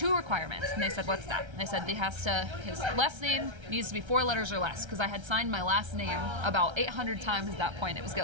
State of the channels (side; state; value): left; late; 1.3 ms